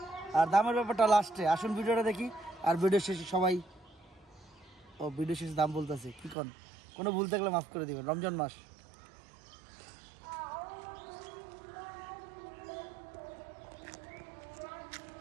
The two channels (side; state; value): left; drops out; at 6.4 s